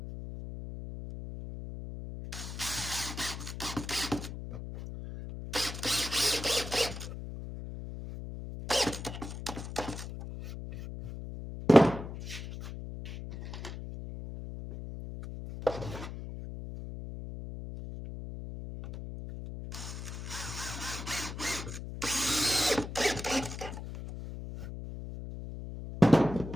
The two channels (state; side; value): noise; left; hum, 9 dB below the sound